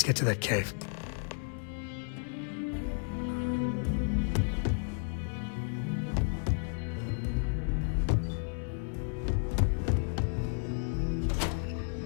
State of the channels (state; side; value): silent; right; 56 dB below the other